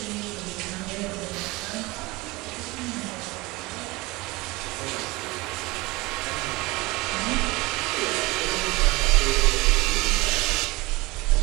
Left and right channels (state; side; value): quieter; left; 22.4 dB